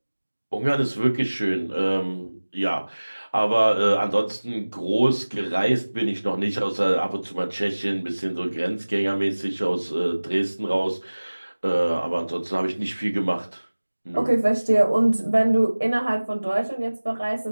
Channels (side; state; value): both; inverted; correlation -1.00